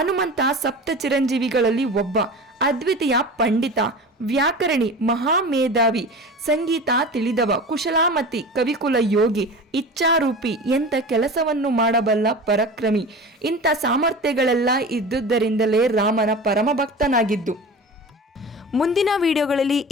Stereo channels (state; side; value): normal; both; correlation 0.33